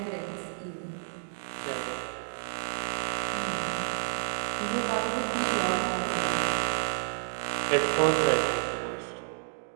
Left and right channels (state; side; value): silent; left; digital silence